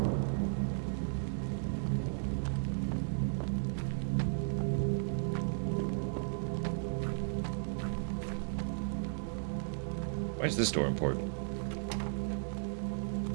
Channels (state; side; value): silent; left; digital silence